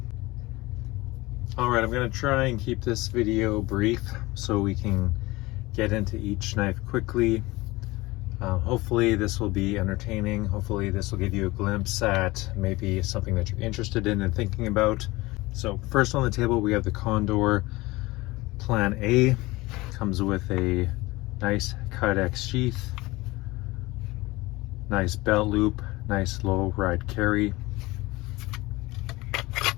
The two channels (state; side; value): quieter; right; 21.0 dB